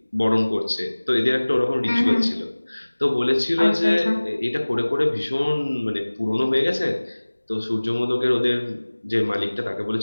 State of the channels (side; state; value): both; inverted; correlation -1.00